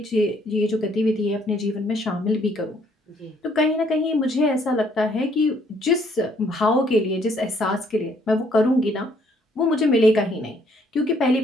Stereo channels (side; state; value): both; normal; correlation 0.66